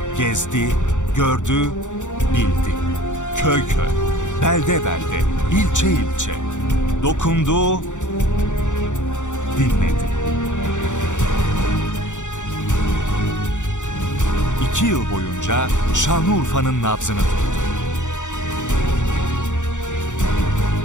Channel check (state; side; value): late; right; 0.85 ms